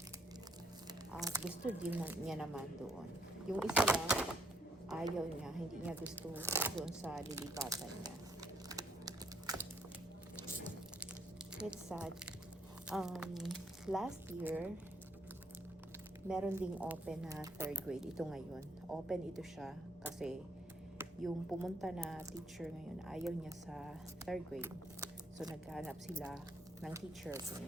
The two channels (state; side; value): normal; both; correlation 0.71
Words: At gusto din niya naman doon. Yung isa lang, ayaw niya, hindi niya gusto doon sa lilipatan niya. It's sad. Last year, meron ding open na 3rd grade. Ito ngayon. Open ito siya kasi yung pumunta na teacher ngayon, ayaw niya sa 3rd grade. So, naghahanap sila ng teacher kung